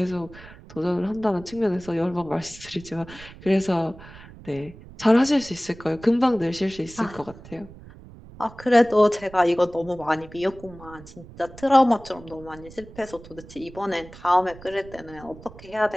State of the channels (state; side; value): noise; right; rumble, 18 dB below the sound